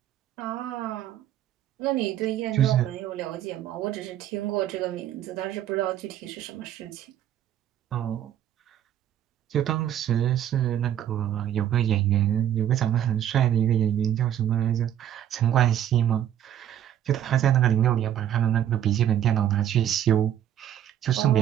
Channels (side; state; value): left; quieter; 10.8 dB